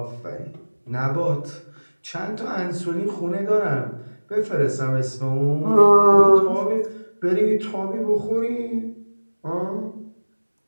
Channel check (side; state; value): both; inverted; correlation -1.00